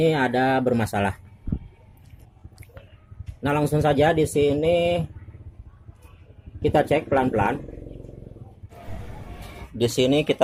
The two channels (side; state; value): both; identical; correlation 1.00